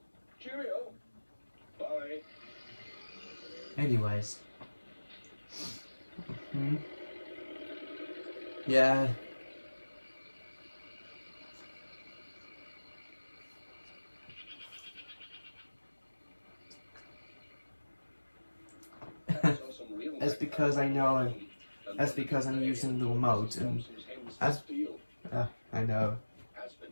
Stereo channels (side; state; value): both; inverted; correlation -1.00